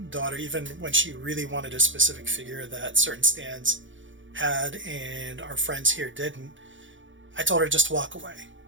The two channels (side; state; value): left; late; 0.56 ms